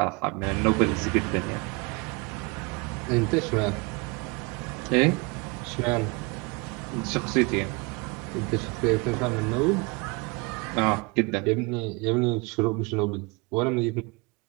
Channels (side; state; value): left; quieter; 28.7 dB